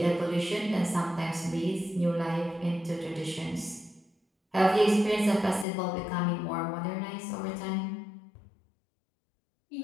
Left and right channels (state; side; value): drops out; right; at 5.7 s